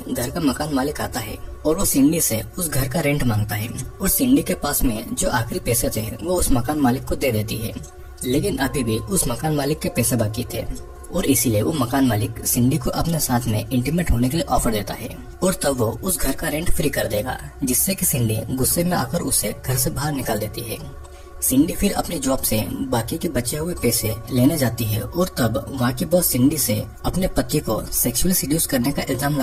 घर का मकान मालिक आता है और वो सिंडी से उस घर का रेंट मांगता है और सिंडी के पास में जो आखिरी पैसे थे वो उस मकान मालिक को दे देती है, लेकिन अभी भी उस मकान मालिक के पैसे बाकी थे और इसीलिए वो मकान मालिक सिंडी को अपने साथ में इंटीमेट होने के लिए ऑफर देता है और तब वो उस घर का रेंट फ्री कर देगा, जिससे कि सिंडी गुस्से में आकर उसे घर से बाहर निकाल देती है। सिंडी फिर अपनी जॉब से बाकी के बचे हुए पैसे लेने जाती है और तब वहाँ की बॉस सिंडी से अपने पति को सेक्सुअली सीड्यूस करने का इल्जाम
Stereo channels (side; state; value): both; identical; correlation 1.00